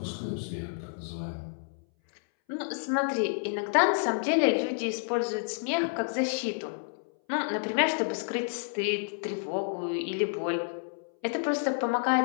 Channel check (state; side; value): silent; right; 58 dB below the other